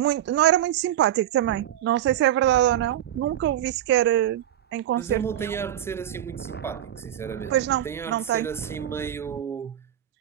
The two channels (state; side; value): quieter; left; 11.8 dB